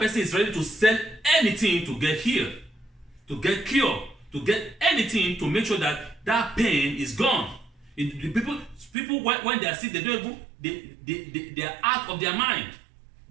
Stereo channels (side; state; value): left; drops out; at 8.9 s